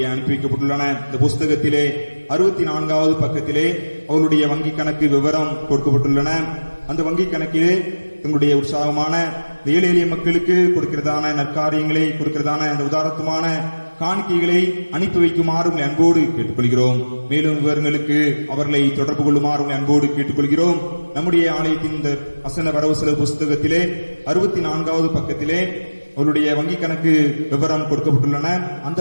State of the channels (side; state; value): both; inverted; correlation -1.00